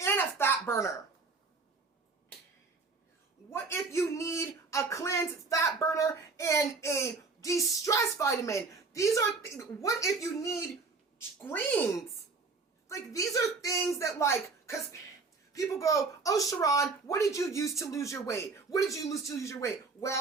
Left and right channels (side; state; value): left; quieter; 4.2 dB